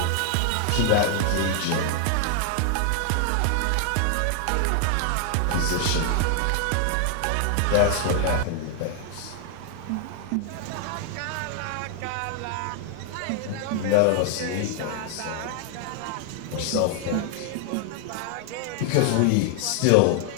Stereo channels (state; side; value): different; both; correlation 0.00